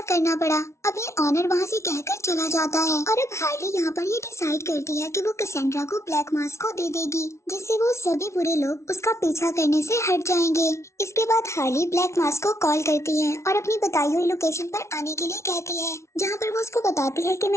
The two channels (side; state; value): right; late; 0.13 ms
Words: करना पड़ा। अब ये ऑनर वहाँ से कहकर चला जाता है और अब हार्ली यहाँ पर ये डिसाइड करती है कि वो कैसेंड्रा को ब्लैक मास्क को दे देगी, जिससे वो सभी बुरे लोग उसका पीछा करने से हट जाएंगे। इसके बाद हार्ली ब्लैक मास्क को कॉल करती है और अपनी बताई हुई लोकेशन पर आने के लिए कहती है, जहाँ पर वो उसको बताती है कि